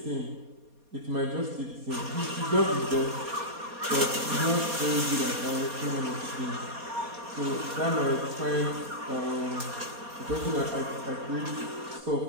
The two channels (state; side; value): late; left; 4.2 ms